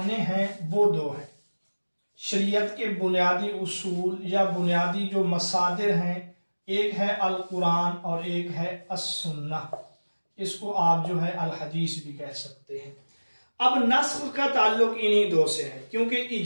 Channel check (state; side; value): inverted; both; correlation -1.00